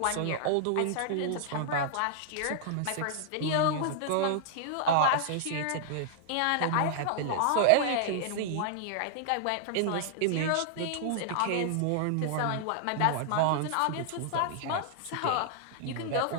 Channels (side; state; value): both; different; correlation -0.01